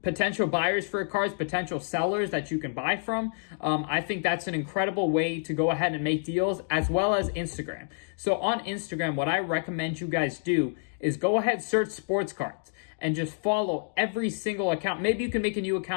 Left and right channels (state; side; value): silent; right; digital silence